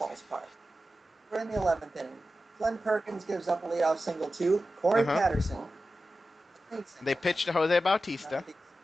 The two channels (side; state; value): both; normal; correlation 0.93